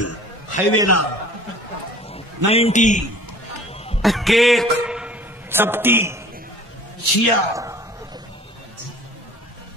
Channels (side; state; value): both; normal; correlation 0.47